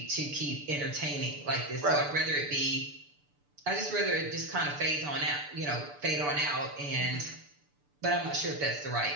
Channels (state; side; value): late; left; 6.8 ms